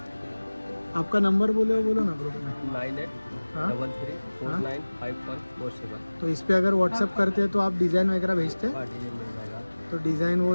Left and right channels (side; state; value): both; inverted; correlation -1.00